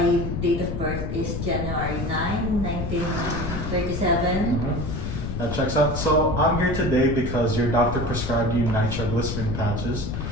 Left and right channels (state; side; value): noise; left; rumble, 4 dB below the sound